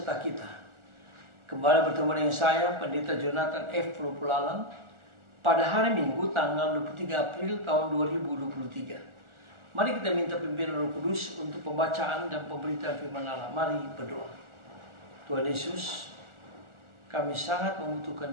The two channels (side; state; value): left; late; 1.4 ms